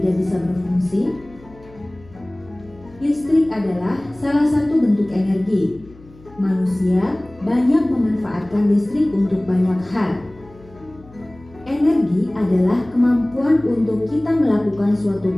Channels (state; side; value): noise; left; hum, 24 dB below the sound